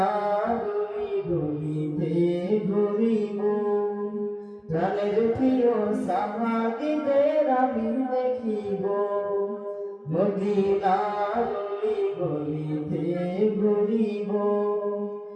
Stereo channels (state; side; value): identical; both; correlation 1.00